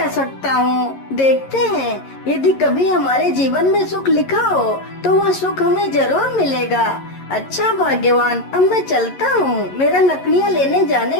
सकता हूँ। देखते हैं, यदि कभी हमारे जीवन में सुख लिखा हो तो वह सुख हमें जरूर मिलेगा। अच्छा भाग्यवान, अब मैं चलता हूँ, मेरा लकड़ियाँ लेने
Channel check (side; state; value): right; late; 11 ms